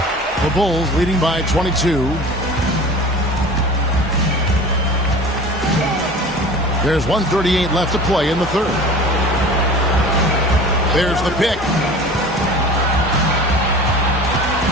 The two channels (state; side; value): normal; both; correlation 0.40